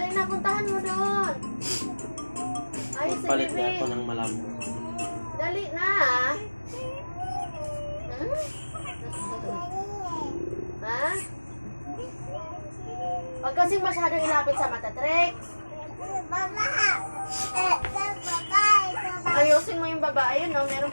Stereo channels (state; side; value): inverted; both; correlation -1.00